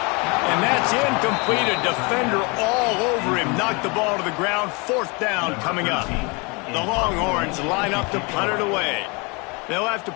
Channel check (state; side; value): quieter; right; 29.4 dB